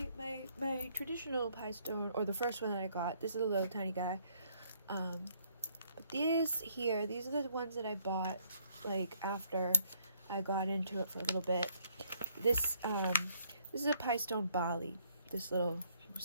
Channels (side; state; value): both; inverted; correlation -0.67